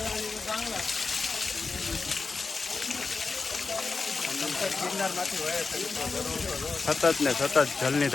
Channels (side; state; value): right; quieter; 4.2 dB